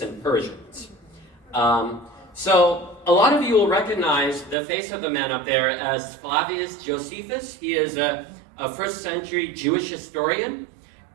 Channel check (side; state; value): left; drops out; at 4.5 s